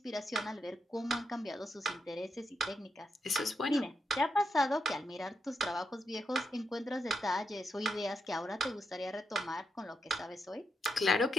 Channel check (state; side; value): normal; both; correlation 0.83